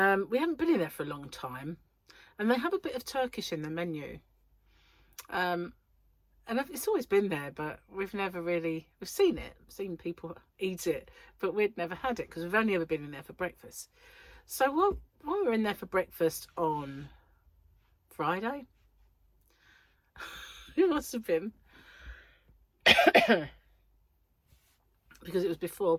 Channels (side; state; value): both; identical; correlation 1.00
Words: haven't been in there for a long time, and they have a bit of Turkish in the menu. And it's always been there, but we've seen it, seen people eat it, but we'd never had it because we've only ever been in there for breakfast. So while we were in there for breakfast on Friday, it must have been, because it was